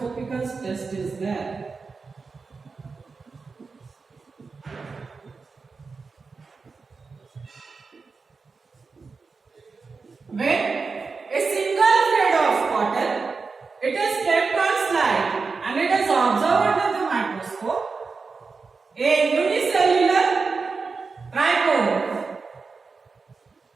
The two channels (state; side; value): quieter; left; 4.6 dB